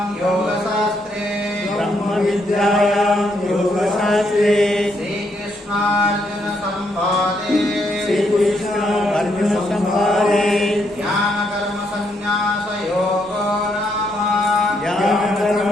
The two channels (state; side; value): normal; both; correlation 0.75